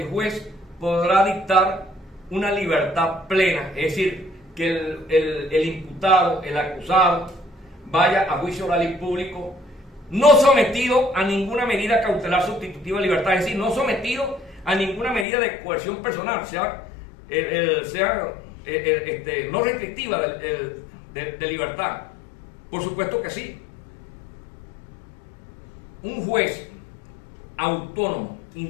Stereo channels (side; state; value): right; drops out; at 15.2 s